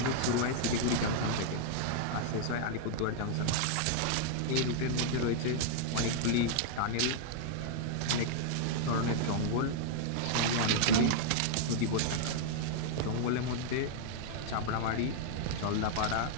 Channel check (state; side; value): different; both; correlation -0.01